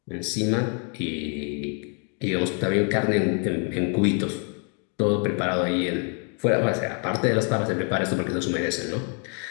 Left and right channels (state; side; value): quieter; right; 39.8 dB